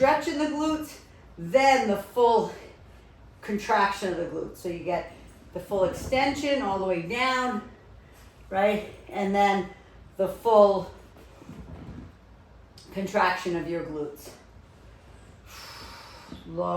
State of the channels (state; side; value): identical; both; correlation 1.00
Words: in the glutes, then the full contraction of the glutes. So you get the full extension all the way down, right? And then the full contraction of your glutes.